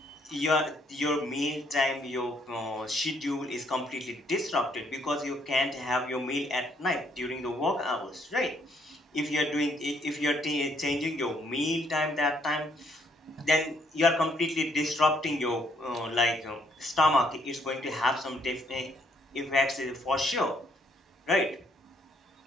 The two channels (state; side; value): normal; both; correlation 0.69